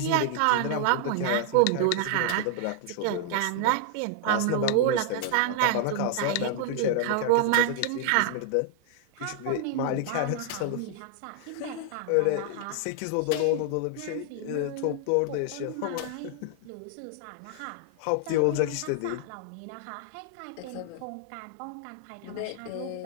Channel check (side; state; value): both; different; correlation 0.00